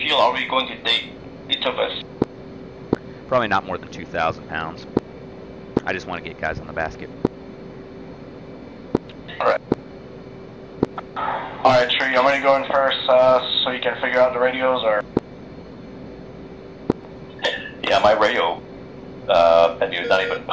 are we going to take, each of us? Probably not more than 2,000 pounds. I just want to get guys on the basket. Alright. Alright, Tree, I'm going to go in first so you can figure out the radios, or? Yeah, my radio menu is not even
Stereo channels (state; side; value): identical; both; correlation 1.00